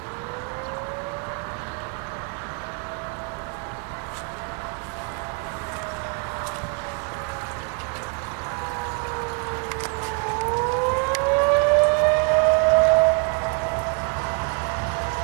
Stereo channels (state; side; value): quieter; left; 33.1 dB